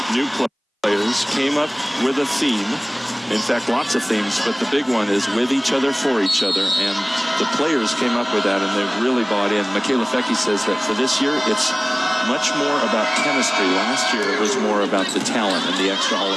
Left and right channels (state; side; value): identical; both; correlation 1.00